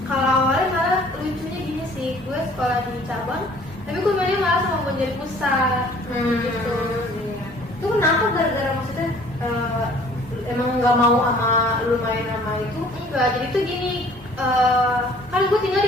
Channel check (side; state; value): both; normal; correlation 0.54